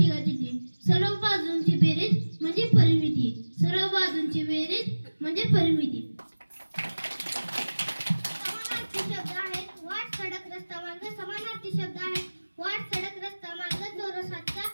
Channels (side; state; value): both; inverted; correlation -1.00